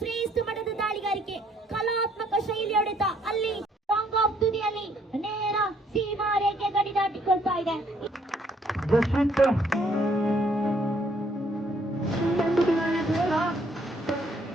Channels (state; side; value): normal; both; correlation 0.66